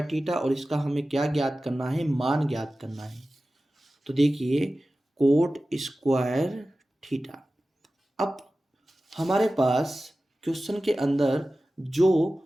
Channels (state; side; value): normal; both; correlation 0.95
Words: theta. और इसका हमें क्या ज्ञात करना है? मान ज्ञात करना है। तो देखिए कोट स्क्वायर थीटा। अब हमारे पास क्वेश्चन के अंदर जो